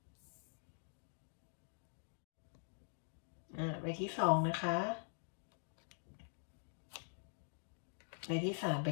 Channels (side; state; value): right; silent; digital silence